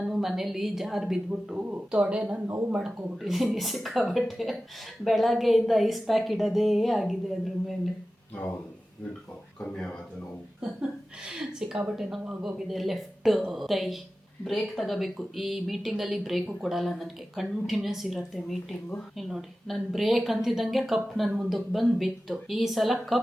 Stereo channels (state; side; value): normal; both; correlation 0.95